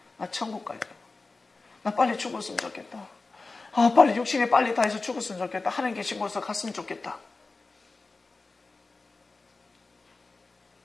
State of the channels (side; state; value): right; quieter; 3.7 dB